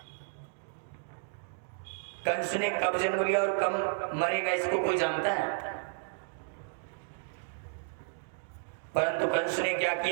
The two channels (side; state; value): left; silent; digital silence